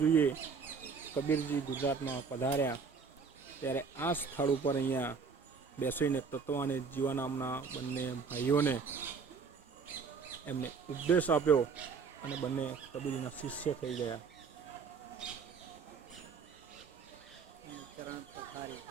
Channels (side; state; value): left; quieter; 5.4 dB